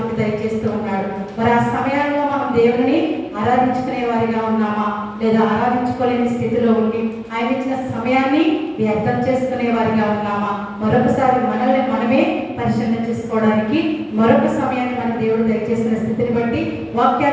దయచేస్తూ ఉన్నాడు. మరి ఆ సమయాల్లో మనం దేవుని ఆరాధించుకునే వారిగా ఉన్నామా లేదా ఆరాధించుకోలేని స్థితిలో ఉండి ఆయన ఇచ్చిన సమయాన్ని వ్యర్థం చేసుకునే వారిగా ఉన్నామా? మరొకసారి మనల్ని మనమే పరిశీలన చేసుకోవడానికి మరొక సమయాన్ని మన దేవుడు దయచేసిన స్థితిని బట్టి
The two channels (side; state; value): both; identical; correlation 1.00